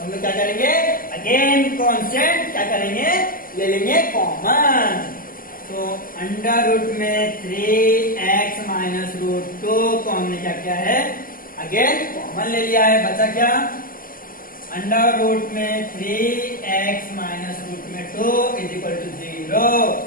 हम लोग क्या करेंगे, अगेन कांस्टेंट क्या करेंगे, ले लेंगे कॉमन। तो अंडर रूट में 3x - √2 को हमने क्या किया है, अगेन कॉमन ले लिया है, बचा क्या, अंडर रूट में 3x - √2 = 0।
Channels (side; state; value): right; late; 0.41 ms